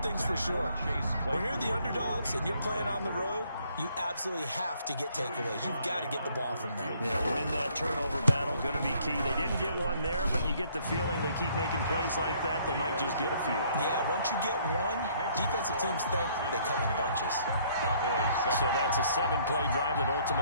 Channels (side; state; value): both; inverted; correlation -0.63